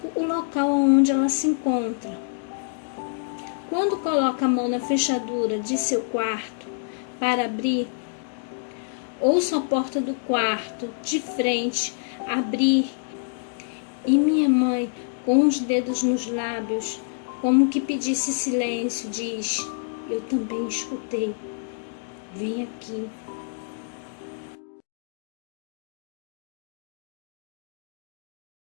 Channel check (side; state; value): right; silent; digital silence